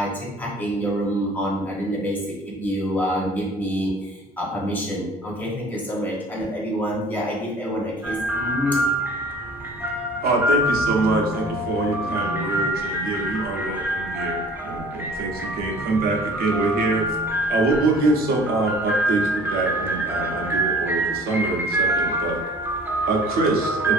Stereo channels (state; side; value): normal; both; correlation 0.49